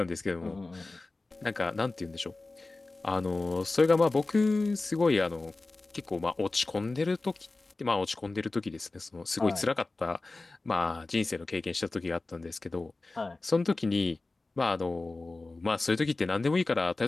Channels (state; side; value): quieter; right; 3.3 dB